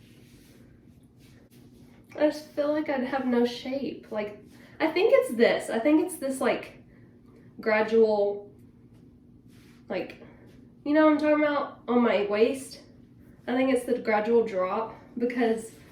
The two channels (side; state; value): both; identical; correlation 1.00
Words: I just feel like I'd have no shape. Like, I think it's this. I think it's this like gradual, like, you know what I'm talking about, on my waist. I think it's the gradual drop, because